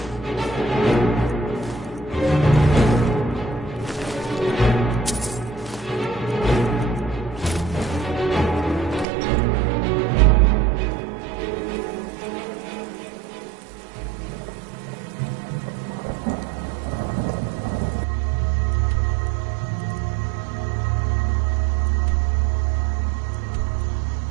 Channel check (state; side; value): drops out; left; at 9.1 s